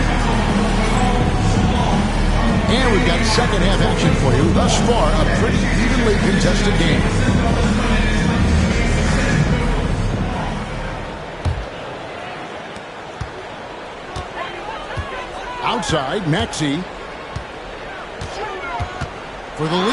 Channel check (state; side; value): identical; both; correlation 1.00